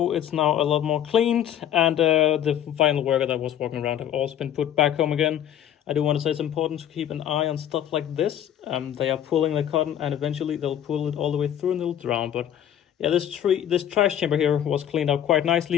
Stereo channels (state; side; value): quieter; right; 10.3 dB